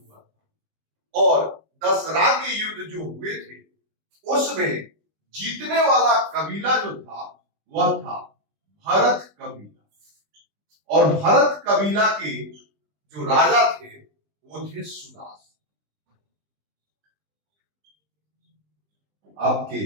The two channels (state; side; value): late; left; 20 ms